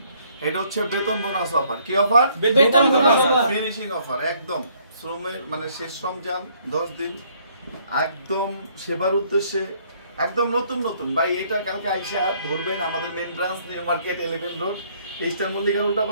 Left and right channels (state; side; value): inverted; both; correlation -0.65